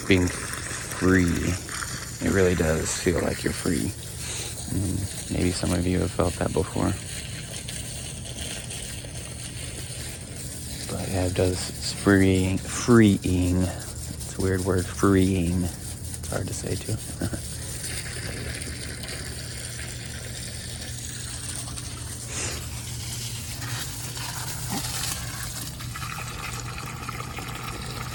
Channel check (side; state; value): both; identical; correlation 1.00